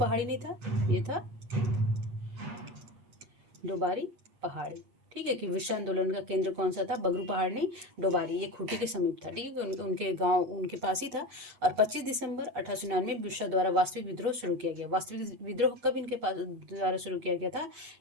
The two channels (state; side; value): late; left; 8.4 ms